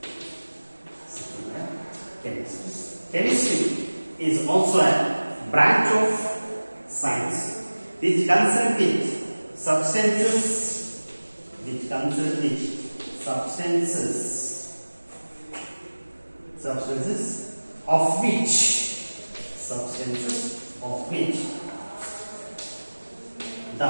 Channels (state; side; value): inverted; both; correlation -1.00